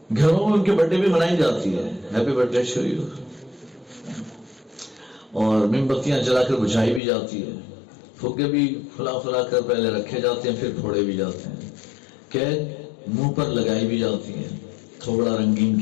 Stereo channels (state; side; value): drops out; right; at 7.0 s